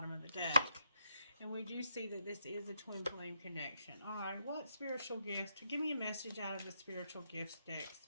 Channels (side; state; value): both; inverted; correlation -0.79